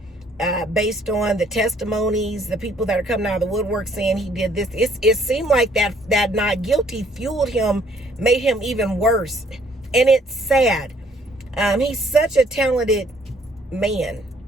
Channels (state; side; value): normal; both; correlation 0.63